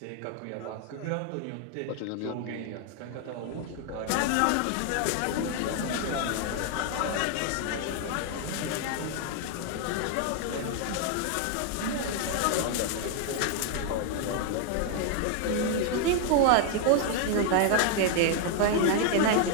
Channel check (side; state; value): both; different; correlation 0.00